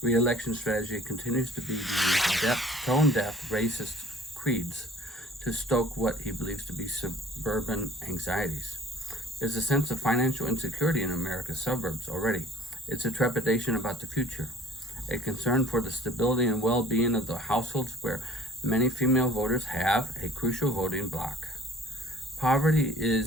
re-election strategy continues to be to use tone-deaf racist creeds to stoke what he believes to be suburban anxieties. There's a sense of financial insecurity in America's suburbs already. It's a trepidation about the future, a concern for the stability and well-being of the households where many female voters have a crucial voting bloc. Poverty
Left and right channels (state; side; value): normal; both; correlation 0.51